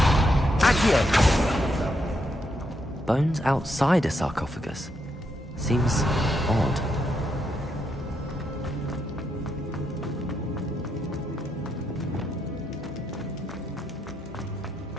Accio. Bones outside a sarcophagus. Seems odd.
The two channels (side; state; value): both; normal; correlation 0.80